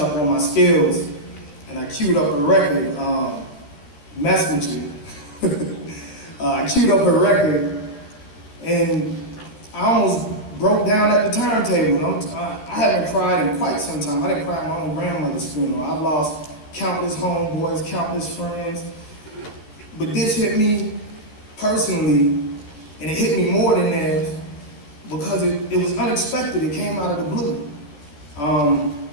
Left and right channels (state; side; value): late; right; 14 ms